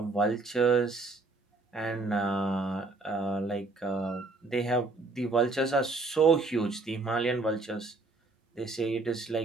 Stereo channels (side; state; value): left; quieter; 3.5 dB